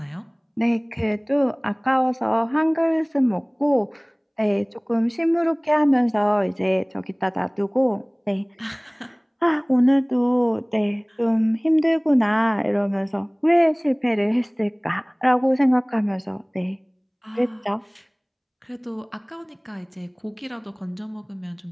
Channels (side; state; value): both; identical; correlation 1.00